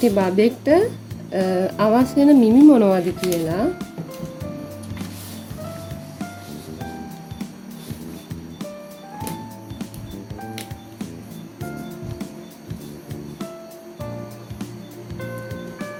බබෙක්ට අවශ්‍ය වෙන මිමි මොනවද කියලා.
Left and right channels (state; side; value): identical; both; correlation 1.00